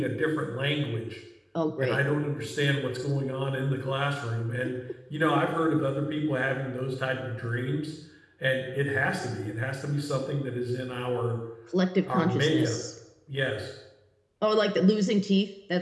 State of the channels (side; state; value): both; identical; correlation 1.00